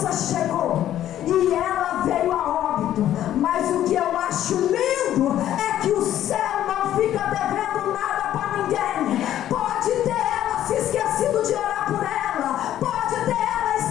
chegou e ela veio a óbito. Mas o que eu acho lindo é que o céu não fica devendo nada para ninguém. Pode ter ela se esquecido de orar por ela, pode ter ela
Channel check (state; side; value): quieter; right; 11.9 dB